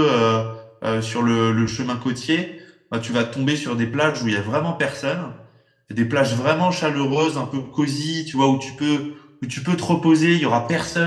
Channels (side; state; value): both; identical; correlation 1.00